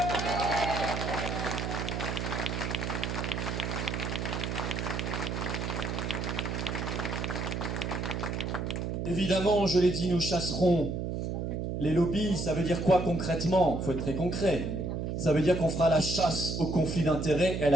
Évidemment, je l'ai dit, nous chasserons les lobbies. Ça veut dire quoi concrètement? Il faut être très concret. Ça veut dire qu'on fera la chasse au conflit d'intérêts et à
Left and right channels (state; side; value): noise; right; hum, 2 dB below the sound